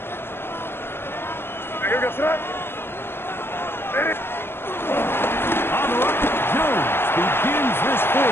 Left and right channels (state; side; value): late; right; 0.11 ms